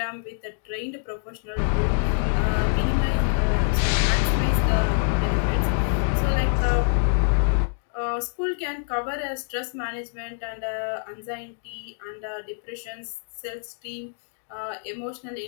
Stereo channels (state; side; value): silent; right; digital silence